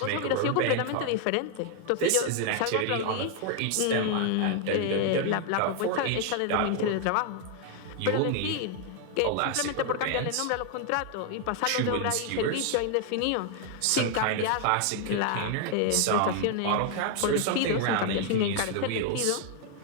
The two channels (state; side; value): different; both; correlation 0.00